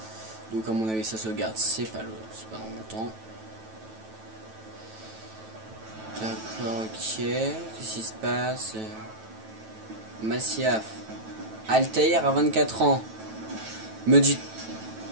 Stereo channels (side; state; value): left; late; 9.1 ms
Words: Donc à mon avis ça sauvegarde, c'est pas dans longtemps. D'accord, ok. Qu'est-ce qui se passe? Massiaf. Altaïr à 24 ans. Me dites